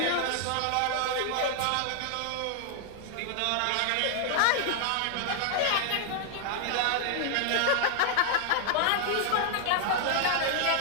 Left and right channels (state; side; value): different; both; correlation 0.00